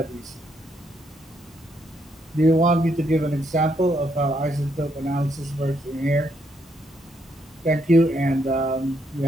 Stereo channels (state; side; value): normal; both; correlation 0.75